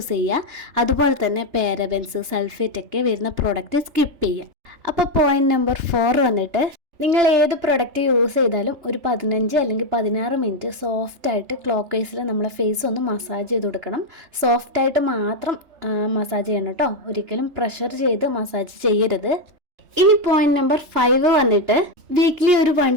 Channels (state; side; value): late; left; 3.3 ms